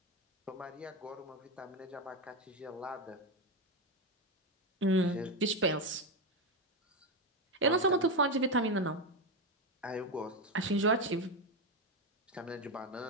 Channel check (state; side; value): normal; both; correlation 0.10